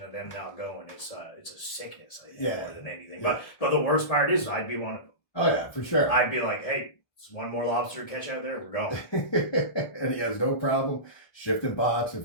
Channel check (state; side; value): late; right; 1.3 ms